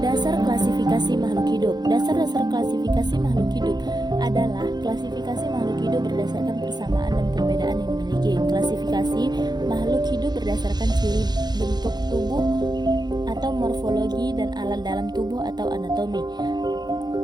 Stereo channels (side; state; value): left; late; 0.20 ms